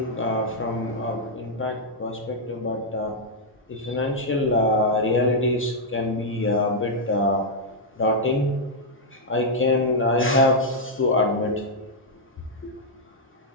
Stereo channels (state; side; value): normal; both; correlation -0.04